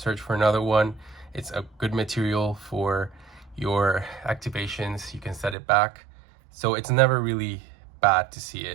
for another one. It's a good material for your activations. You can set it back. So it's never really bad to see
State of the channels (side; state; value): left; drops out; at 5.6 s